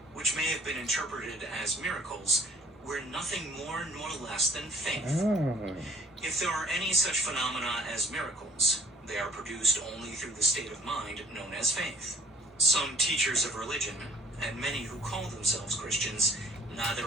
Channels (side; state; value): both; normal; correlation 0.55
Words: which may have been interpreted as miracles, were nothing more nor less than faith. If there are any such phenomena as miracles, they are produced only through the state of mind known as faith. Some teachers of religion, and many who call themselves Christians,